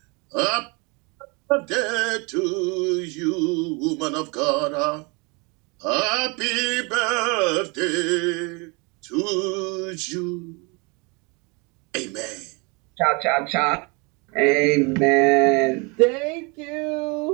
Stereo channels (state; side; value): quieter; left; 29.8 dB